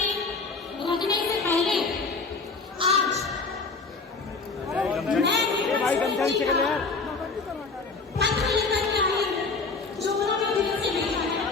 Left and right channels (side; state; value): right; quieter; 4.2 dB